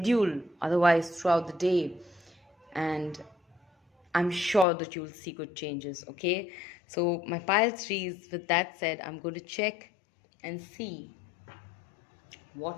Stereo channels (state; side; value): drops out; right; at 4.7 s